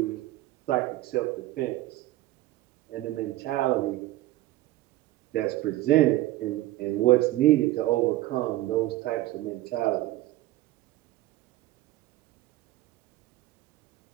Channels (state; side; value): quieter; left; 16.7 dB